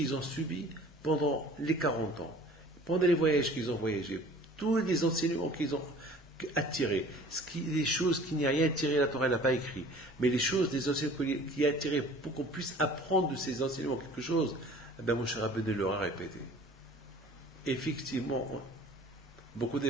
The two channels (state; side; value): normal; both; correlation 0.48